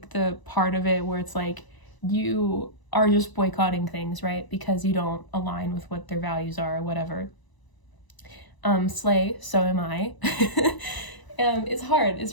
the part of it where it's like you are just boycotting things, right, because you don't align with what their values are or whatever, slay, so am I. It's hard. It's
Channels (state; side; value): late; right; 1.0 ms